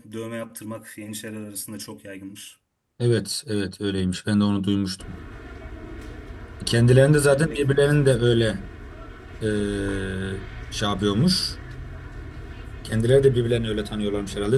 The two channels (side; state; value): both; identical; correlation 1.00